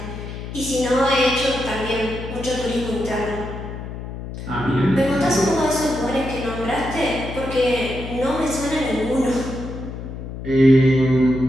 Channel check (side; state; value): left; noise; hum, 9 dB below the sound